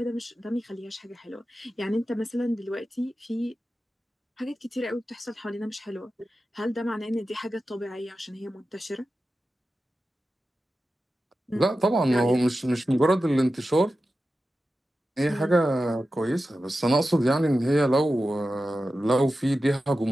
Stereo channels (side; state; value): both; normal; correlation 0.93